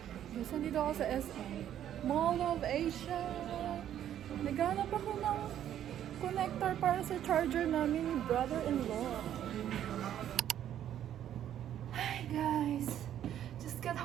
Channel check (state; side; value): quieter; left; 10.8 dB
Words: Nandito ako sa SM. Mall of Asia. Naghanap ako ng connector para sa charger namin ni brother-in-law. Hi guys! Just got